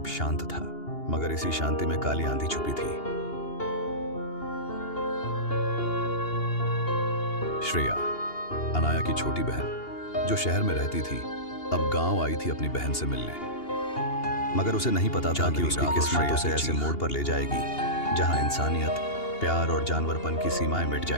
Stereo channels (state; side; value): late; right; 2.8 ms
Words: शांत था, मगर इसी शांति में काली आंधी छुपी थी। श्रेया, अनाया की छोटी बहन, जो शहर में रहती थी, अब गांव आई थी अपनी बहन से मिलने। मगर उसे नहीं पता था कि उसकी किस्मत उसे ऐसे मोड़ पर ले जाएगी जहां इंसानियत, प्यार और जानवरपन की सीमाएं मिट